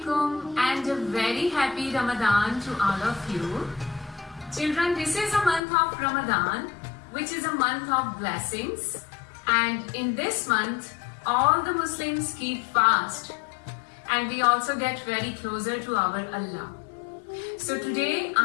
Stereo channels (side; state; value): right; drops out; at 5.6 s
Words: and a very happy Ramadan to all of you. Children, this is a month of Ramadan, which is a month of blessings. And in this month, all the Muslims keep fast. And we also get very closer to our Allah. So today,